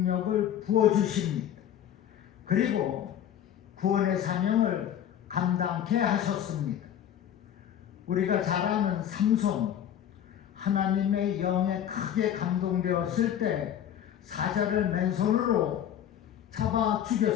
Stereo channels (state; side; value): quieter; right; 10.1 dB